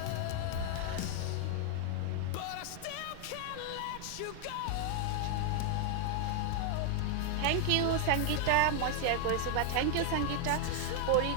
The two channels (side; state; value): both; different; correlation 0.00